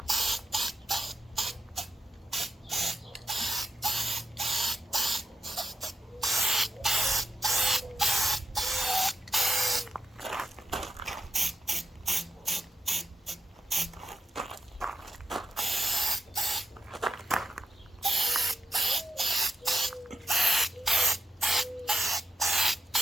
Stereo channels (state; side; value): normal; both; correlation 0.86